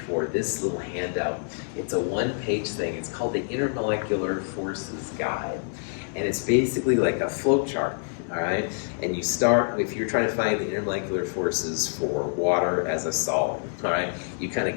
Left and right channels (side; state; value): right; silent; digital silence